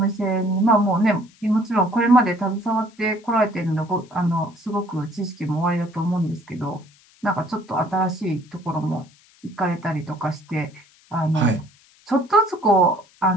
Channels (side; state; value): left; noise; hiss, 29 dB below the sound